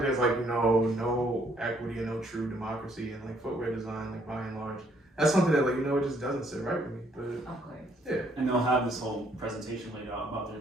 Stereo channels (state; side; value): normal; both; correlation 0.67